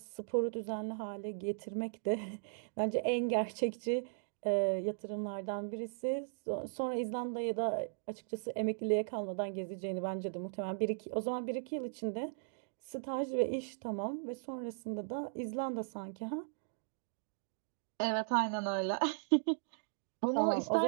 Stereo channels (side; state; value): left; silent; digital silence